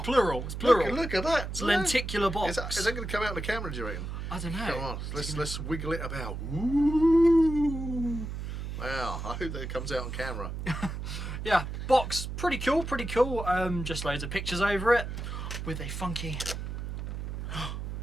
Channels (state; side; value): noise; right; hum, 6 dB below the sound